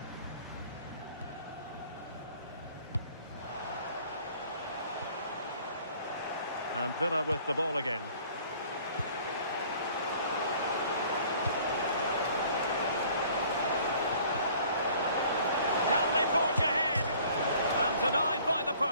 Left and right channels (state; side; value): inverted; both; correlation -0.54